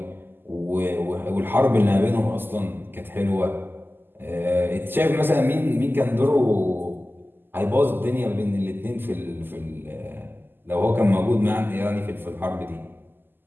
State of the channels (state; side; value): late; left; 0.096 ms